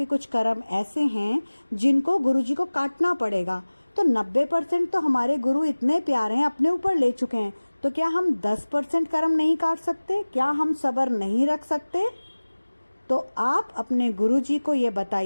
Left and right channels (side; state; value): both; inverted; correlation -1.00